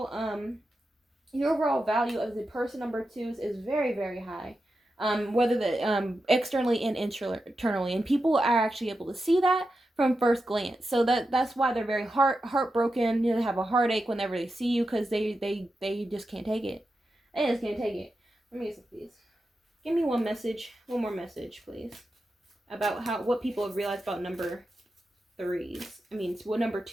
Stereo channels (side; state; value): both; normal; correlation 0.89